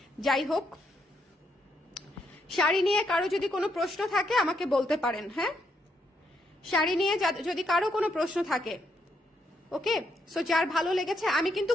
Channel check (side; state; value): both; normal; correlation 0.77